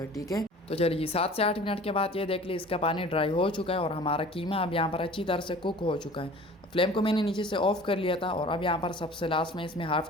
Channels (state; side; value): normal; both; correlation 0.45